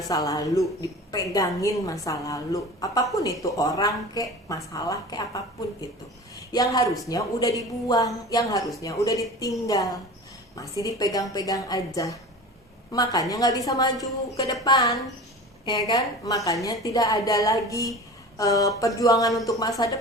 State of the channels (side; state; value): both; normal; correlation 0.36